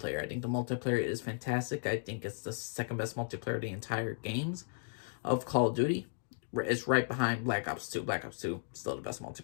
I think the multiplayer is fantastic. I think it's the second best multiplayer of the entire games of Call of Duty. It's right behind Black Ops 2. Black Ops 2 still the best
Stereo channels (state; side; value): silent; right; digital silence